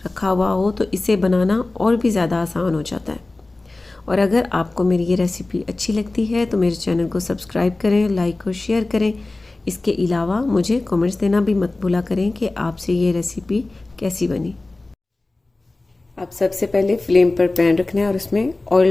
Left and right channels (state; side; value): quieter; right; 3.0 dB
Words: रखा हुआ हो तो इसे बनाना और भी ज़्यादा आसान हो जाता है। और अगर आपको मेरी ये रेसिपी अच्छी लगती है तो मेरे चैनल को सब्सक्राइब करें, लाइक और शेयर करें। इसके अलावा मुझे कमेंट्स देना भी मत भूला करें कि आपसे ये रेसिपी कैसी बनी। अब सबसे पहले फ्लेम पर पैन रखना है और उसमें